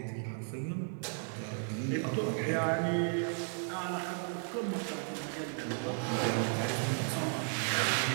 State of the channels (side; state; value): left; silent; 55 dB below the other